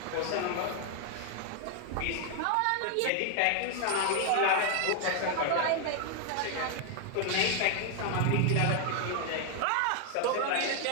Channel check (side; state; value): both; different; correlation 0.00